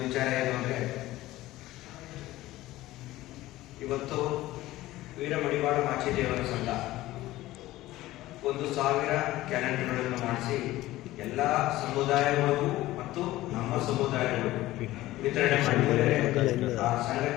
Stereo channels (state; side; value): quieter; right; 16.7 dB